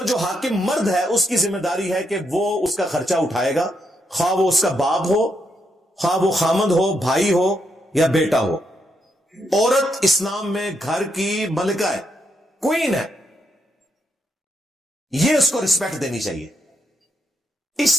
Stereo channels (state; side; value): normal; both; correlation 0.79